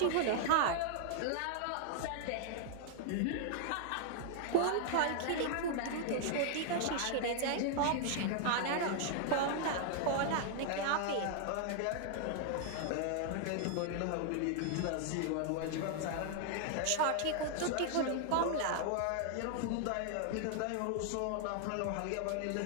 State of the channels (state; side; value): different; both; correlation 0.00